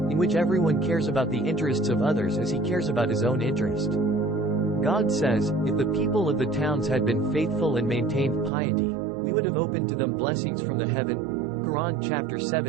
in which everyone cares about the interests of others as he cares about his own interest. God says, if the people of the towns had been faithful and maintained piety, we would have opened to them blessings from the heaven. Quran chapter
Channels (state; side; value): drops out; left; at 8.5 s